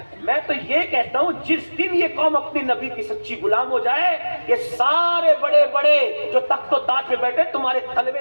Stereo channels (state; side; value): inverted; both; correlation -1.00